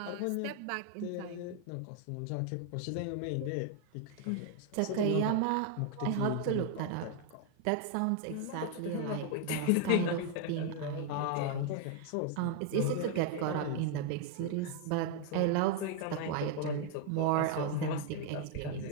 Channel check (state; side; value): different; both; correlation 0.00